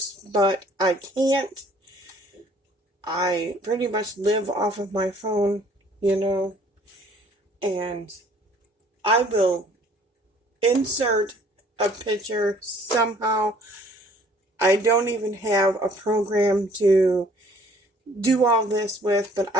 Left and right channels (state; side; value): normal; both; correlation 0.57